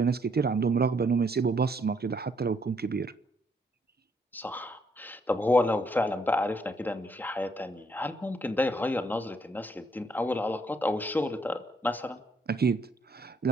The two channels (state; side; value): normal; both; correlation 0.70